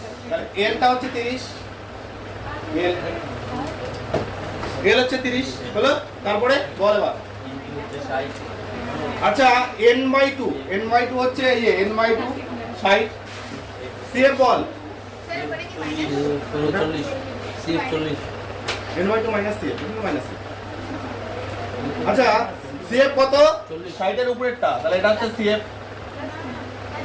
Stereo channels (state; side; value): identical; both; correlation 1.00